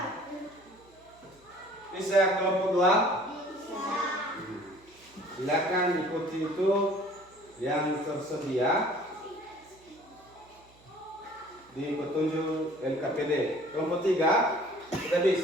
Bisa kelompok 2? Bisa. Silakan ikuti itu yang tersedia di petunjuk LKPD. Kelompok 3 sudah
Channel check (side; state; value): right; noise; hum, 28 dB below the sound